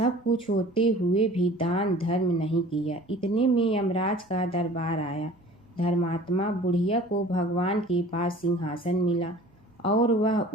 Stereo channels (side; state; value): both; normal; correlation 0.46